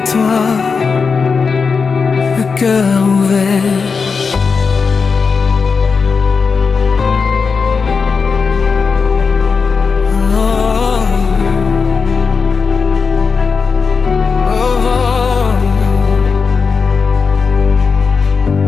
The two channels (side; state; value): right; quieter; 5.2 dB